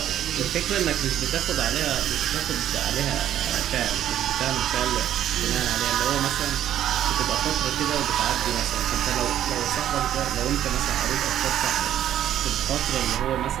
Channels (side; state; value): left; quieter; 11.3 dB